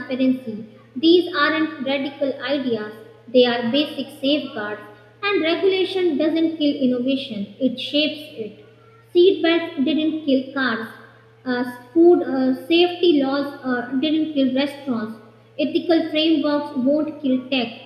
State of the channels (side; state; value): both; identical; correlation 1.00